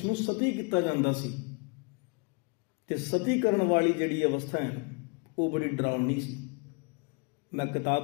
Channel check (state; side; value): quieter; right; 33.8 dB